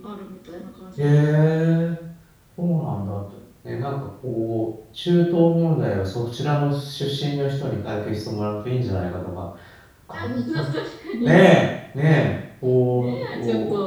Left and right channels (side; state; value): both; identical; correlation 1.00